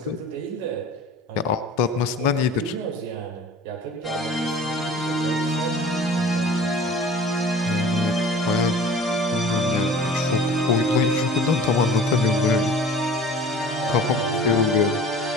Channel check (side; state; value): both; normal; correlation 0.44